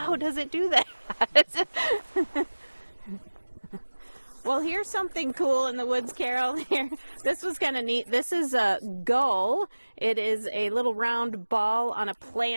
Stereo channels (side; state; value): both; inverted; correlation -1.00